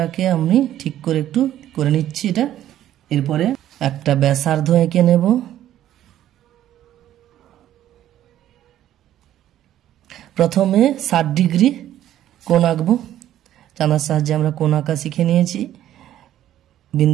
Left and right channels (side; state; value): left; quieter; 12.3 dB